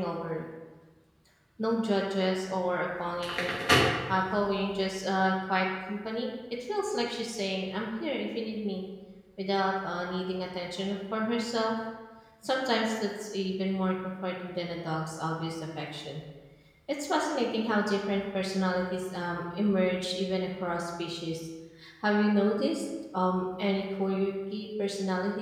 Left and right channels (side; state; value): both; identical; correlation 1.00